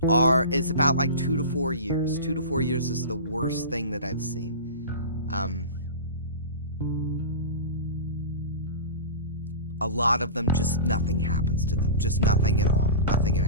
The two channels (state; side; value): inverted; both; correlation -0.31